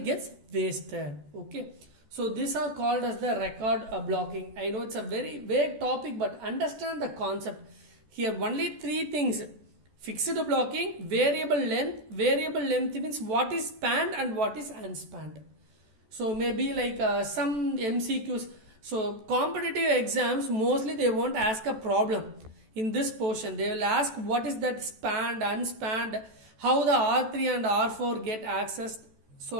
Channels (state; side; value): late; left; 14 ms